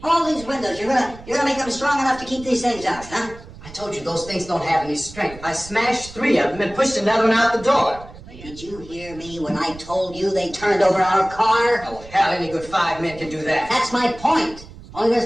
All these windows, you're gonna make them strong enough to keep these things out, huh? I told you, those things don't have any strength. I smashed 3 of them and pushed another one out the door. Did you hear me when I told you they turned over our car? Oh, hell, any good 5 men can do that. That's my point. Only there's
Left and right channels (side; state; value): right; noise; rumble, 17 dB below the sound